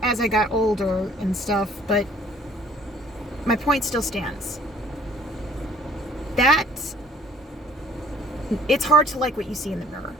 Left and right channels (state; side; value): normal; both; correlation 0.57